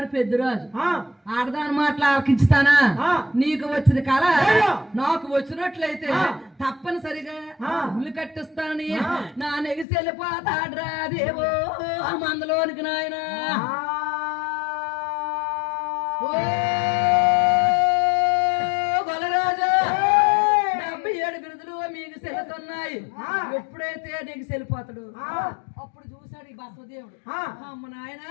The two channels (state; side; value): drops out; right; at 9.9 s